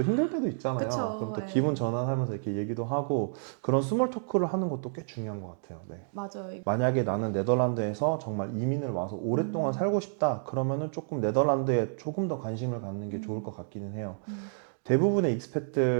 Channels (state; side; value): silent; left; digital silence